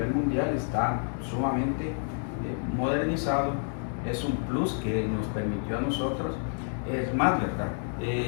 mundial está sumamente modernizado, es un plus que nos permitió a nosotros. Es más, ¿verdad?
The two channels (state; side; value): silent; right; 59 dB below the other